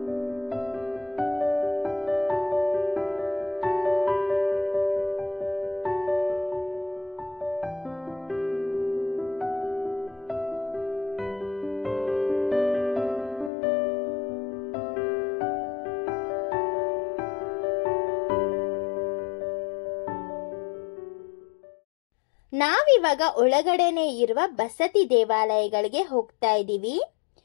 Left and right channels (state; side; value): drops out; right; at 13.5 s